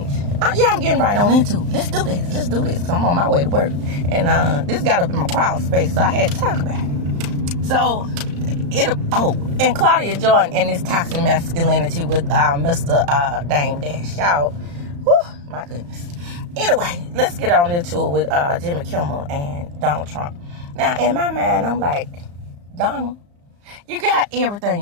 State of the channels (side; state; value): left; late; 35 ms